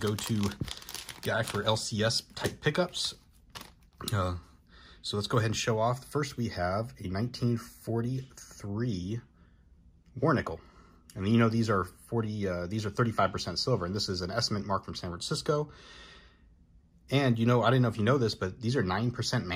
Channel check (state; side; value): identical; both; correlation 1.00